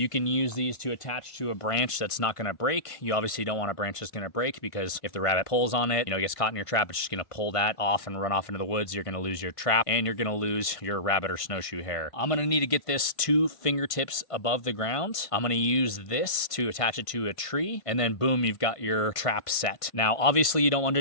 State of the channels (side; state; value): right; late; 1.5 ms